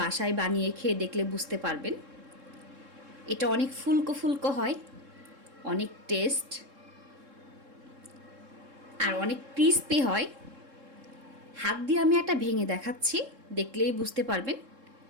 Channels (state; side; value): late; left; 3.7 ms